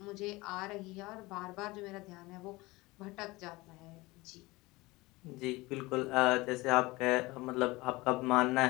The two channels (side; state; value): right; quieter; 21.8 dB